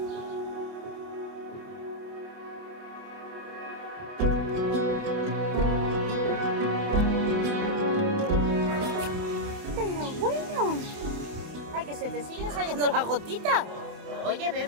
Ay, que se te siguen saliendo las gotitas. Oye,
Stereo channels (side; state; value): left; late; 28 ms